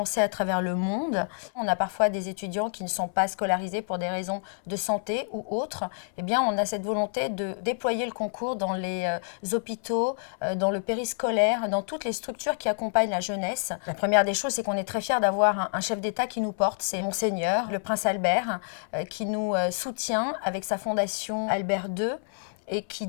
à travers le monde. On a parfois des étudiants qui ne sont pas scolarisés pour des raisons de santé ou autres. Eh bien, on a cette volonté de déployer le concours dans les hôpitaux, dans le périscolaire, dans toutes les structures qui accompagnent la jeunesse. La première des choses, c'est qu'on est très fiers d'avoir un chef d'État qui nous porte. C'est Monseigneur, le Prince Albert, qui nous soutient avec sa fondation Albert II. Et qui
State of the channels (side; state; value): right; silent; 59 dB below the other